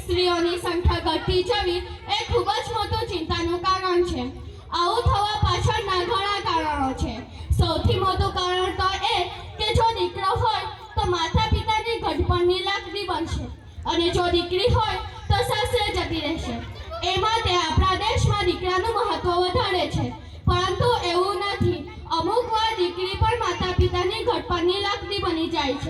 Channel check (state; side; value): identical; both; correlation 1.00